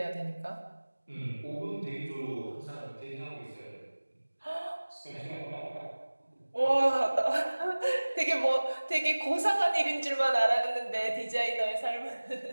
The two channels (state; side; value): inverted; both; correlation -1.00